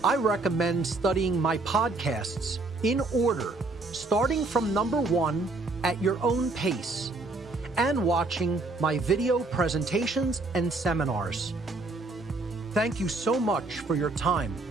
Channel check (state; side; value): quieter; left; 3.3 dB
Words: I recommend studying my podcasts in order, starting from number 1 at your own pace, and watching my video presentations and seminars. Thank you so much for your time